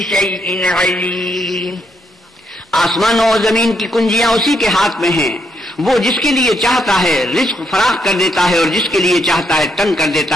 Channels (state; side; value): normal; both; correlation 0.76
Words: شيء عليم۔ آسمانوں اور زمین کی کنجیاں اسی کے ہاتھ میں ہیں، وہ جس کے لیے چاہتا ہے رزق فراخ کر دیتا ہے اور جس کے لیے چاہتا ہے تنگ کر